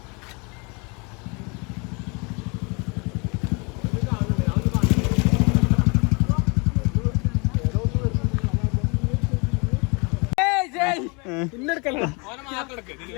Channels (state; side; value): quieter; right; 31.2 dB